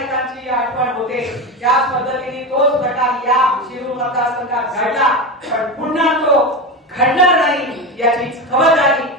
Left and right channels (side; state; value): both; normal; correlation 0.20